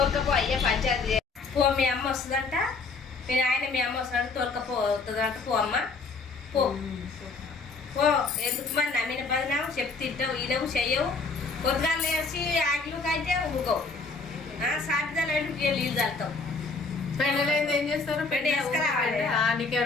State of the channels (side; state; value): right; quieter; 4.0 dB